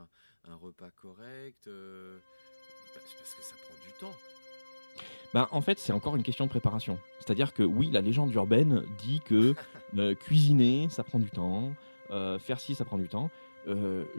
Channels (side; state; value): both; inverted; correlation -1.00